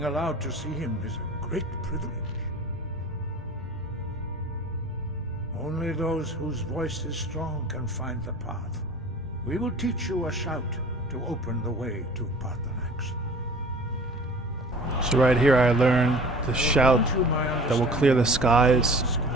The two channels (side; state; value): both; normal; correlation 0.43